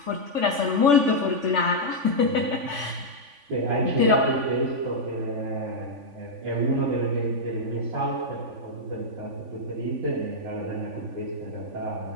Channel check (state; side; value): late; left; 3.5 ms